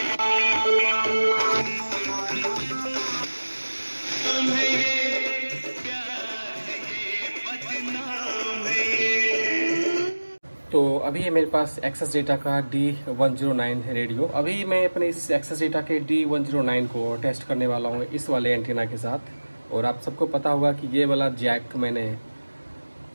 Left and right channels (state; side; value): inverted; both; correlation -1.00